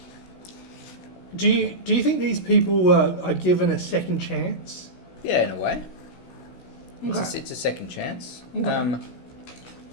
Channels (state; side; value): late; right; 16 ms